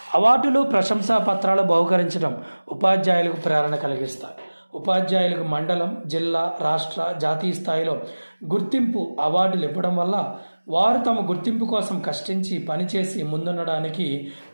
అవార్డులు, ప్రశంసా పత్రాలు బహుకరించడం ఉపాధ్యాయులకు ప్రేరణ కలిగిస్తాయి. ఉపాధ్యాయులకు మండలం, జిల్లా, రాష్ట్ర, జాతీయ స్థాయిలో గుర్తింపు అవార్డులు ఇవ్వడం వల్ల వారు తమ గుర్తింపు కోసం కష్టించి పనిచేసి ముందుండడానికి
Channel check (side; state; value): both; inverted; correlation -1.00